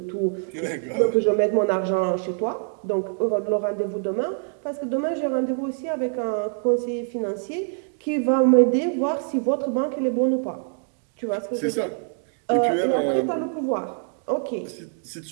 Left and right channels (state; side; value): silent; left; 59 dB below the other